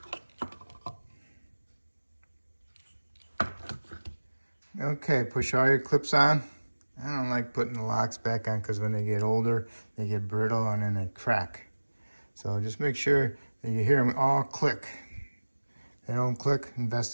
Okay, push all your clips on. I don't like putting the locks back on because when they get older, they get brittle and then they crack. So just make sure that you hear them all click. If they don't click,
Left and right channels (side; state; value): both; inverted; correlation -1.00